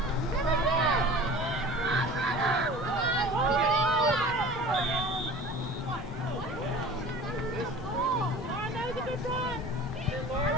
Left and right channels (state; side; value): normal; both; correlation 0.41